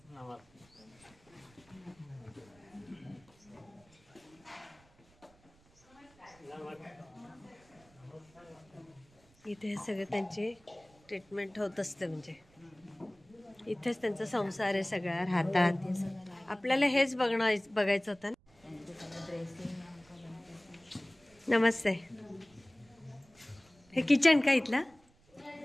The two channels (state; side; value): noise; right; rumble, 30 dB below the sound